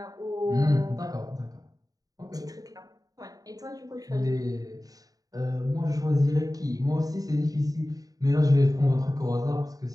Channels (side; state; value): left; late; 0.18 ms